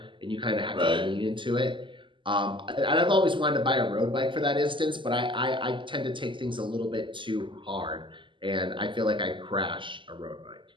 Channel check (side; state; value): left; late; 0.24 ms